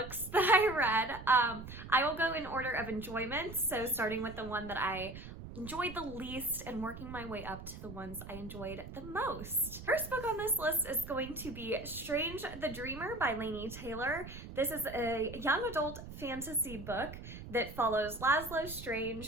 that I read, I will go in order of enjoyment. So starting with the one that I enjoyed the least and working my way up to the ones I enjoyed the most. First book on this list is going to be Strange the Dreamer by Laini Taylor. This is a young adult fantasy book that follows Laszlo Strange,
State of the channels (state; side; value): noise; right; rumble, 12 dB below the sound